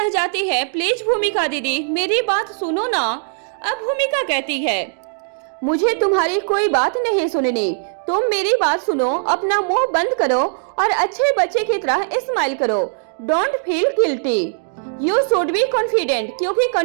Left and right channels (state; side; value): silent; left; digital silence